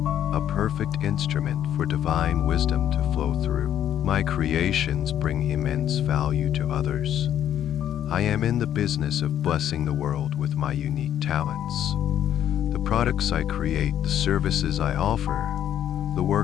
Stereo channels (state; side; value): quieter; right; 10.5 dB